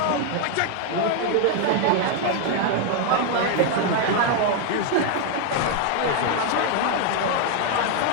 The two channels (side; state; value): both; different; correlation 0.01